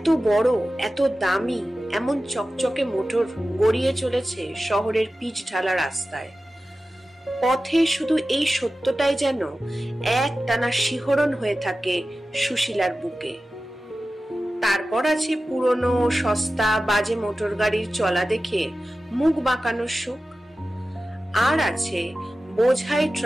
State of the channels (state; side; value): normal; both; correlation 0.95